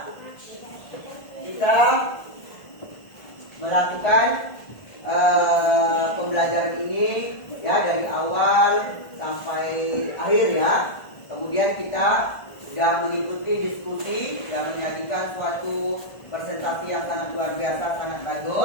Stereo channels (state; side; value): late; right; 1.5 ms